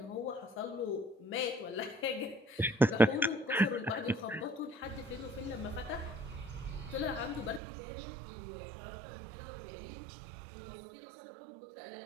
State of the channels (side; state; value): left; drops out; at 7.6 s